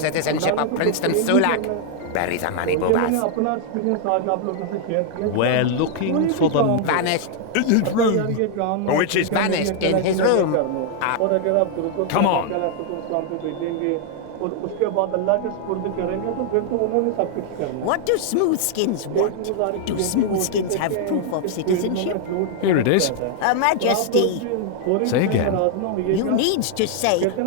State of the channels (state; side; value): different; both; correlation 0.00